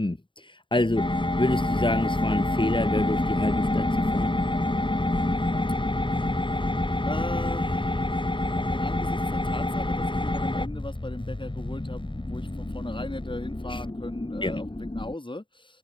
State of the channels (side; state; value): right; late; 0.24 ms